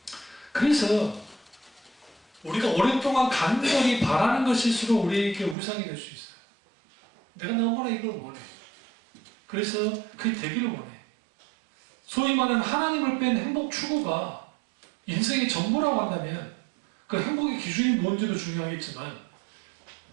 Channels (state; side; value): drops out; left; at 5.6 s